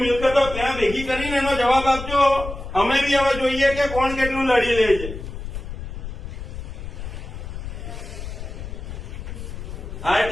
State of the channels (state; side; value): noise; left; rumble, 9 dB below the sound